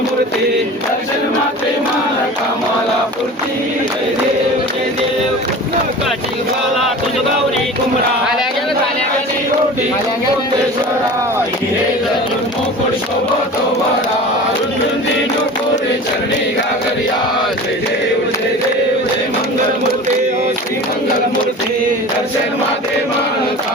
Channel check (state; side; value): normal; both; correlation 0.37